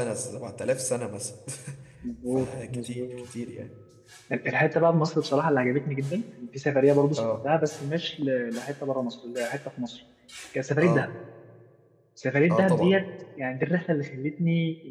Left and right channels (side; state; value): both; identical; correlation 1.00